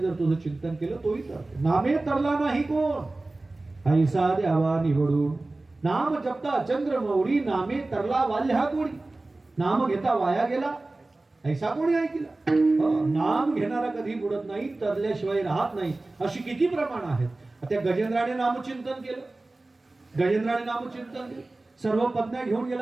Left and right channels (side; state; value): left; quieter; 3.0 dB